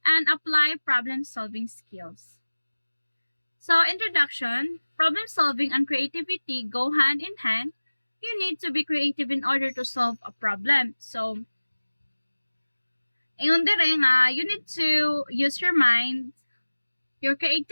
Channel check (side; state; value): both; inverted; correlation -1.00